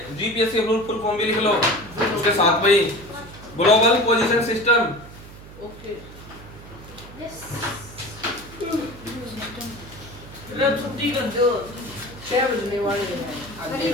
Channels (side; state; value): right; noise; hum, 17 dB below the sound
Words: जीपीएस के फुल फॉर्म भी लिख लो उसके साथ में ही, ग्लोबल पोजीशन सिस्टम। ओके छुट्टी कर दो 6 बजने वाले हैं